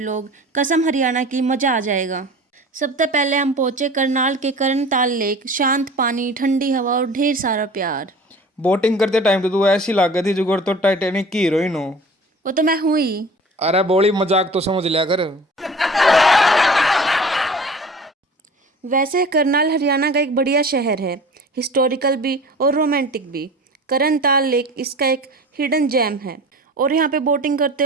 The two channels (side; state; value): both; normal; correlation 0.41